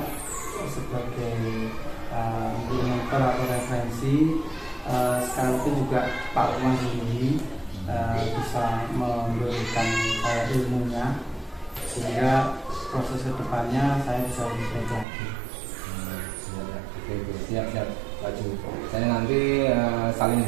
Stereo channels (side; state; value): left; drops out; at 15.1 s